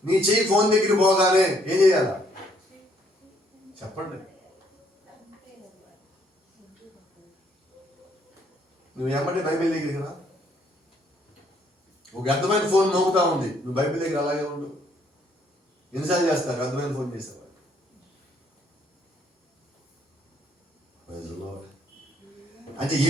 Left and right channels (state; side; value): normal; both; correlation 0.67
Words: నీ చెయ్యి ఫోన్ దగ్గర పోగానే ఏం చేయాలా చెప్పండి? నువ్వు ఏమంటే బైబిల్ దగ్గరికి రా. ఒక అర్థమైన ఫోన్ మోగుతా ఉంది, నువ్వు బైబిల్ దగ్గర అలాగే ఉండు. ఎన్నిసార్లు చేస్తారు అర్థమైన ఫోన్ చేసేవారు? అంటే